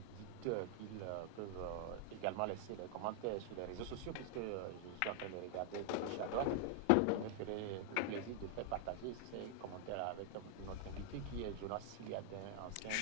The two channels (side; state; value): both; different; correlation 0.00